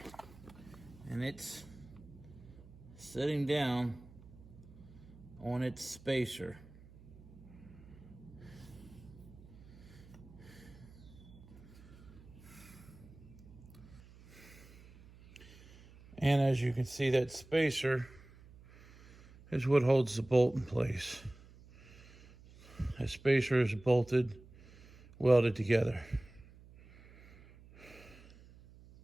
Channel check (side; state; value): right; noise; hum, 21 dB below the sound